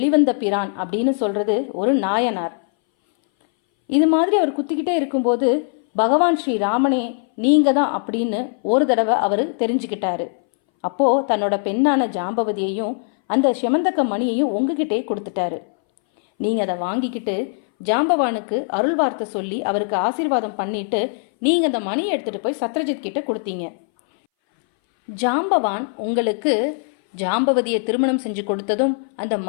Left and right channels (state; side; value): silent; right; 62 dB below the other